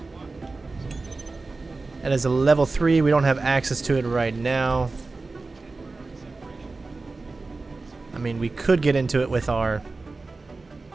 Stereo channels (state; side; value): quieter; left; 3.7 dB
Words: That is a level 3. We don't have access to it right now. I mean, we could get into it with our...